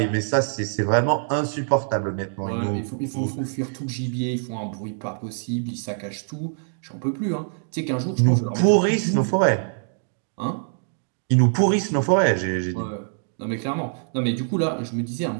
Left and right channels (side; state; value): left; silent; digital silence